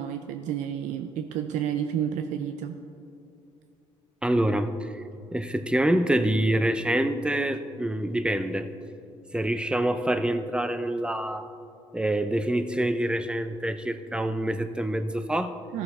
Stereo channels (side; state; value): both; normal; correlation 0.85